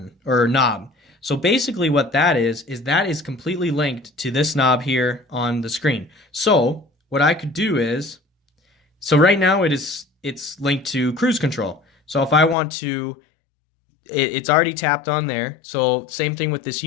or knob. So basically what that is that is completely linked to this knob here on the screen. So what I could do is, so right now it's linked to cruise control. So if I want to, it's already tapped on there. So same thing with this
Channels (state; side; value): drops out; right; at 12.6 s